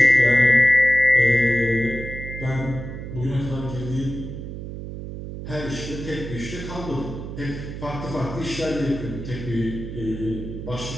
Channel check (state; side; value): noise; right; hum, 9 dB below the sound